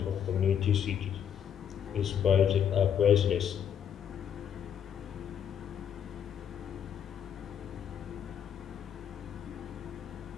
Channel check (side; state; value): right; quieter; 8.7 dB